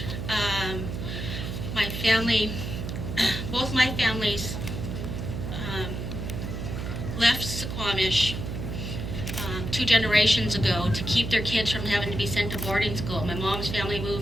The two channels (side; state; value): right; noise; hum, 5 dB below the sound